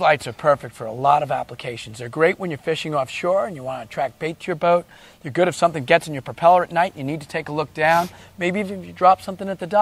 are perfect for a lot of applications. They're great when you're fishing offshore and you want to attract bait to your boat. They're good if something gets in your propeller at night and you need to take a look down, maybe even if you drop something at the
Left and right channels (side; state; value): both; identical; correlation 1.00